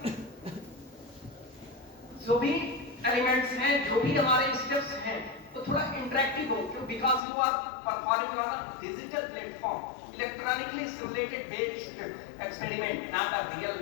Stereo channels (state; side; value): drops out; right; at 7.2 s